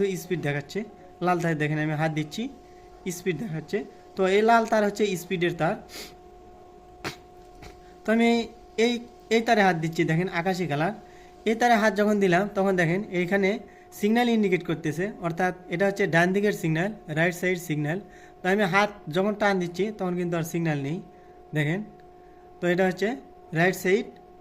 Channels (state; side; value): identical; both; correlation 1.00